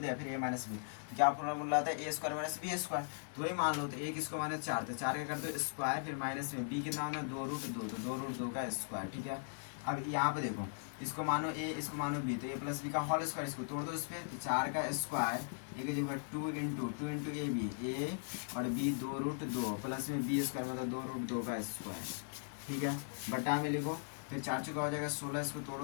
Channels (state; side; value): silent; right; 52 dB below the other